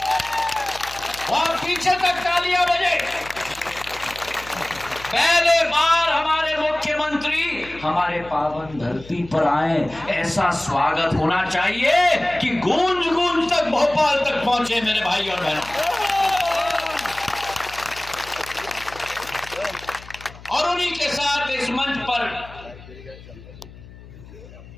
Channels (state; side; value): noise; left; hum, 19 dB below the sound